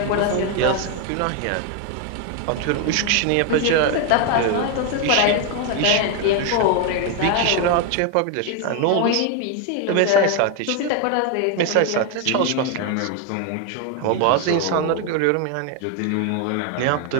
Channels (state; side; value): different; both; correlation 0.01